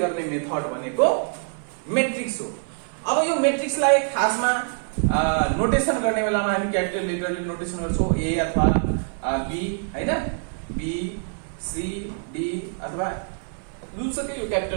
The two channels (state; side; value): silent; left; 58 dB below the other